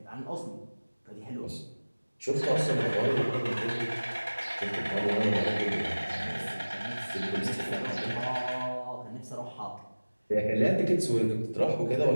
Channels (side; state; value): both; inverted; correlation -1.00